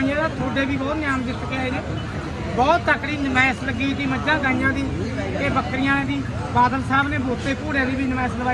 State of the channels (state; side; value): identical; both; correlation 1.00